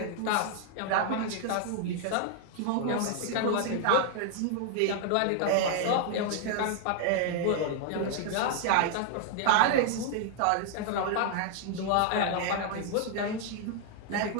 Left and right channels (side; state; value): both; different; correlation 0.00